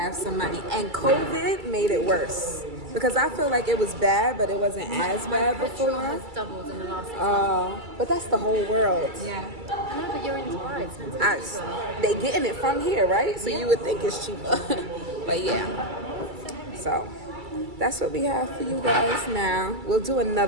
some money. And COVID made it worse. Because I feel like it was bad, but it wasn't as bad Petrol before. has doubled in the last 6 months. But that's the whole world. Yeah. No, but you're in Dubai. It's meant to be cheaper. They getting it from here, right? So you would think it's cheaper. But yeah. So that's what we have for you guys now. We'll do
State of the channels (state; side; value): late; left; 2.3 ms